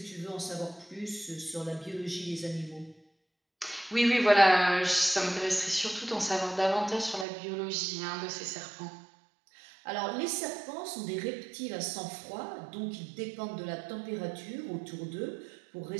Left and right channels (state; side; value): drops out; left; at 7.2 s